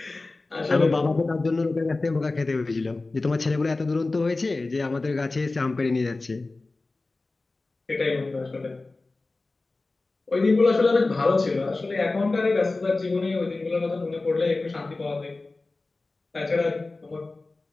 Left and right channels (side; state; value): right; quieter; 3.4 dB